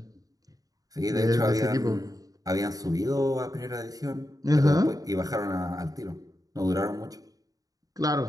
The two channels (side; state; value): left; late; 0.18 ms